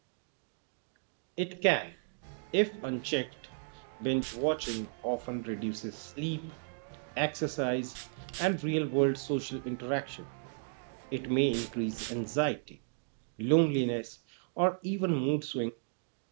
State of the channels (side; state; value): left; silent; digital silence